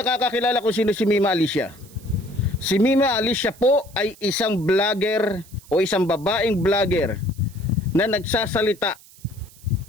kung sino si Mima Alicia, si Mima Alicia po ay isang vlogger o isang babaeng vlogger na nagsasalita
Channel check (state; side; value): noise; right; hiss, 24 dB below the sound